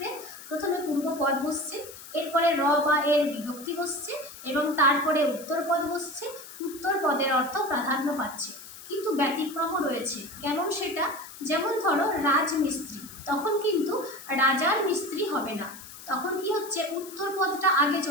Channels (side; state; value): left; noise; hiss, 15 dB below the sound